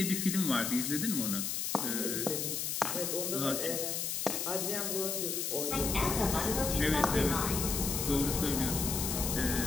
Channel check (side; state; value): left; noise; hiss, 1 dB below the sound